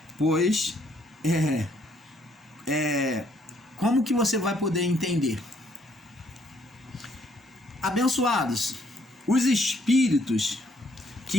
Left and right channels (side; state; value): both; normal; correlation 0.67